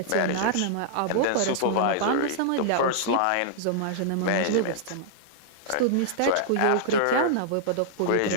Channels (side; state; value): both; different; correlation -0.01